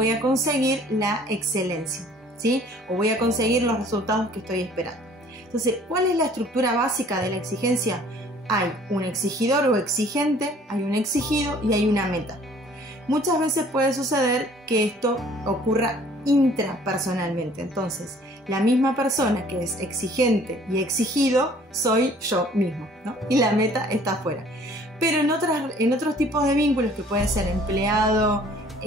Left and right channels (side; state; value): both; normal; correlation 0.54